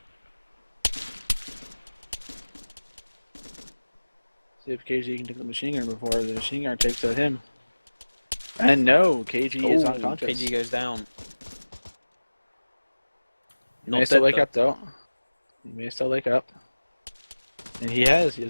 See if KG can take the machine gunner before the machine gunner takes out him. And no, KG is unconscious. KG goes down. He Not may still dead, wake though. up though. He may still wake up. And he has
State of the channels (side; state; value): both; inverted; correlation -1.00